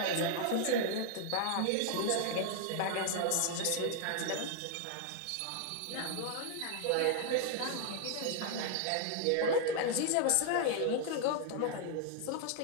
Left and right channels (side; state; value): both; different; correlation 0.00